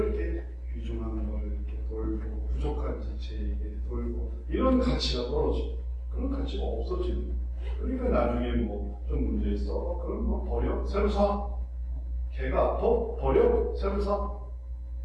이렇게 귀중한 걸 이렇게 돌고 부족한 지체에게 돌고 이런 가치가 떨어지고 그런 가치가 없어지는. 그러니까 나중에 뭐 좀 문제 있어. 그럼 뭐 버려. 새로 사. 개가 아파. 버려. 새로 사.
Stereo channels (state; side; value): identical; both; correlation 1.00